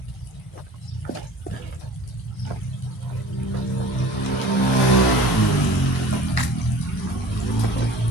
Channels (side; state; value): both; normal; correlation 0.43